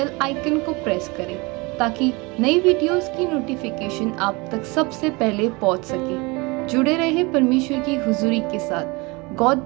आइकन को प्रेस करें, ताकि नई वीडियोस की नोटिफिकेशन आप तक सबसे पहले पहुंच सके। जुड़े रहे परमेश्वर की हुजूरी के साथ। God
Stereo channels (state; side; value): quieter; left; 26.1 dB